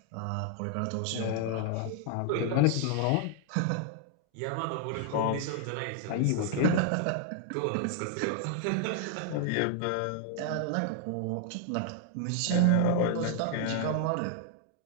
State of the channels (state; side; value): different; both; correlation 0.00